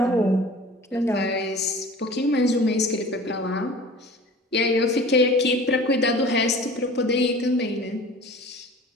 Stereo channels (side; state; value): both; normal; correlation 0.42